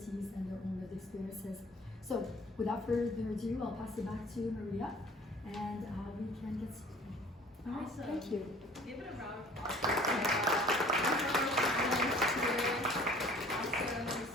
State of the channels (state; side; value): normal; both; correlation 0.50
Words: and their own lived experiences. So without further ado, I'll pass it back to Maria, and we can get started. All right, Awesome. thank you. Give it a round of applause. Awesome. This